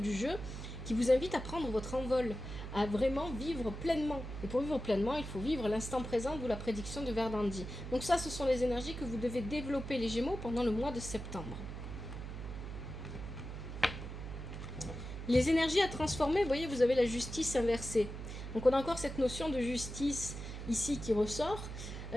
jeu, qui vous invite à prendre votre envol, à vraiment vivre pleinement. Et pour vivre pleinement, il faut vivre l'instant présent, d'où la prédiction de Verdandi. Donc ça, ce sont les énergies que vous devez développer, les Gémeaux, pendant le mois de septembre. Les énergies à transformer, vous voyez, vous avez la justice inversée. Donc on a encore cette notion de justice ici qui ressort.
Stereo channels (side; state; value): right; noise; hum, 8 dB below the sound